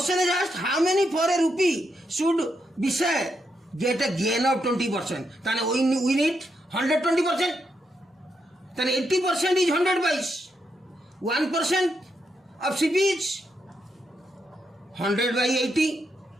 is asked, how many for a rupee should Vishal get a gain of 20%? Then we need 120%. Then 80% is 100 pice. 1% of CP is 100 by 80.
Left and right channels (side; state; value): both; normal; correlation 0.81